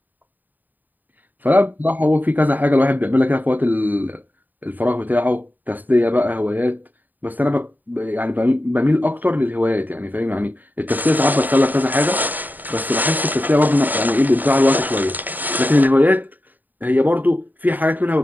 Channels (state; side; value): late; left; 0.086 ms